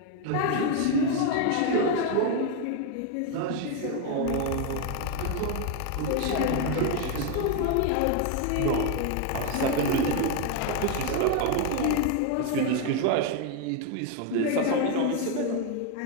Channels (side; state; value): both; different; correlation 0.01